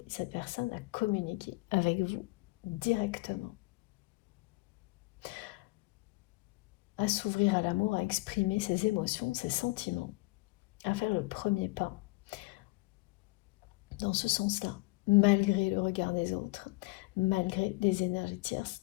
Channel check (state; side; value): quieter; right; 24.5 dB